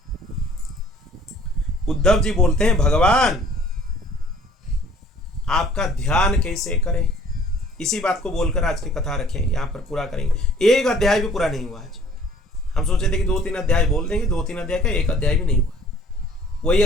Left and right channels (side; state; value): both; normal; correlation 0.54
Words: उद्धव जी बोलते हैं, भगवान आपका ध्यान कैसे करें? इसी बात को बोलकर आज की कथा रखें, यहां पर पूरा करेंगे। एक अध्याय भी पूरा नहीं हुआ आज। हम सोचे थे कि 2-3 अध्याय बोल देंगे, 2-3 अध्याय का एक अध्याय भी नहीं हुआ। वही